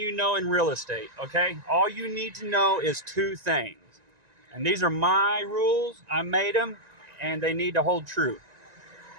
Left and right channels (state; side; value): late; left; 1.9 ms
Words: know in real estate, okay? All you need to know is two things. And these are my rules. I made them, and they need to hold true.